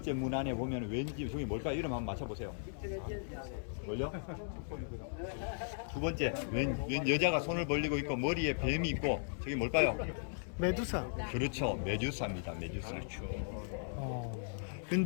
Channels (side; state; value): right; silent; digital silence